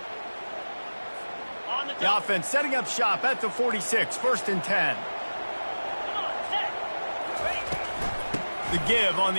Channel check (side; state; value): both; inverted; correlation -1.00